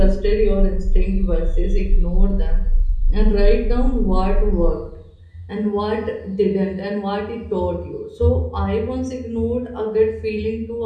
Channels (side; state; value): both; identical; correlation 1.00